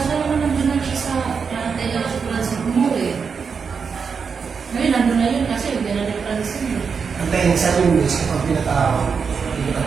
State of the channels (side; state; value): left; quieter; 5.8 dB